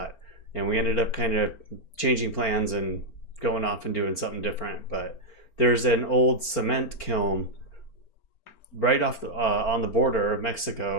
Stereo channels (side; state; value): right; late; 4.4 ms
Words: And we ended up kind of changing plans and going off and doing something different. But there's an old cement kiln right off on the border of